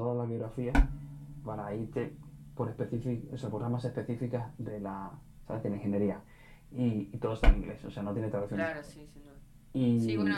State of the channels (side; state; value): both; identical; correlation 1.00